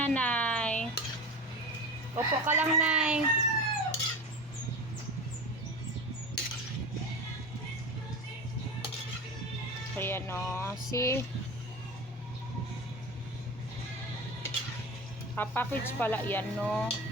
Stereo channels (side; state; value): both; normal; correlation 0.29